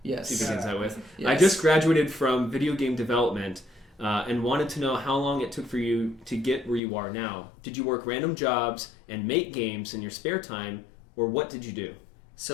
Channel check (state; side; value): drops out; right; at 6.8 s